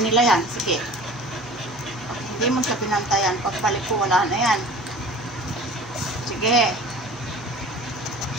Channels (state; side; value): normal; both; correlation 0.42